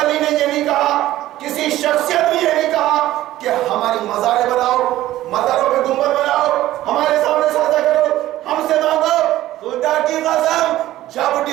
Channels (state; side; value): quieter; left; 14.8 dB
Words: نے یہ نہیں کہا، کسی شخصیت نے یہ نہیں کہا کہ ہماری مزاریں بناؤ، مزاروں پہ گنبد بناؤ، ہمارے سامنے سجدہ کرو، ہم سے مانگو۔ خدا کی قسم جب